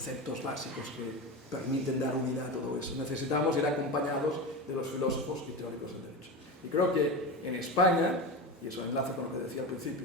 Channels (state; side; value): normal; both; correlation 0.23